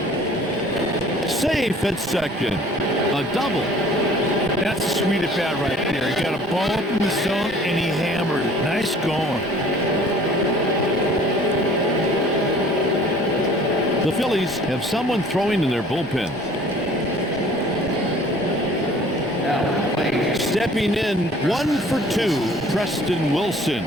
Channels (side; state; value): both; normal; correlation 0.51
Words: Safe at second. A double. That's a sweet at bat right there. He got a ball up in the zone and he hammered it. Nice going. The Phillies have someone throwing in their bullpen. Stepping in, 1 for 2, Preston Wilson.